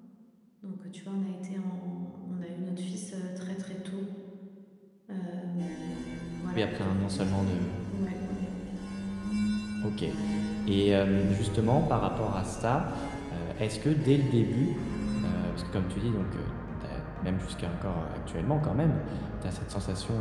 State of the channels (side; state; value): both; identical; correlation 1.00